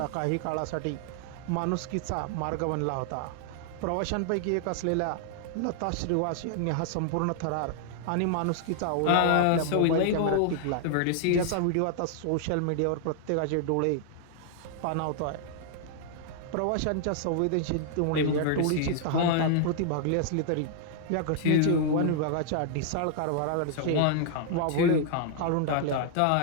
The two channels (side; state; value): both; different; correlation 0.00